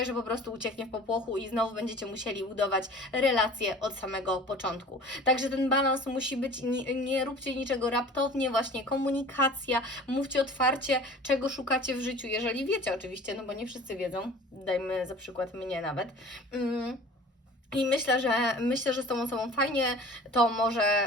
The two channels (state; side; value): normal; both; correlation 0.43